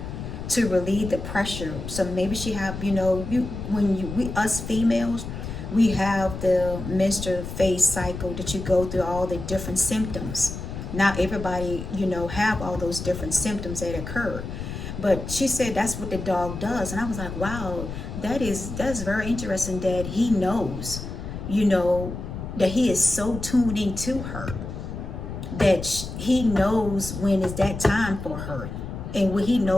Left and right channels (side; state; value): left; noise; rumble, 8 dB below the sound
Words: to relieve the pressure. So maybe she have, you know, you when you we us females, we have the menstrual phase cycle that you go through all the different symptoms. Not everybody, you know, have all those different symptoms that occur. But she said that's what the dog does, and I was like, wow, that's very interesting that he knows, you know, that he is so tuned into her, that he knows when is that time for her, and when he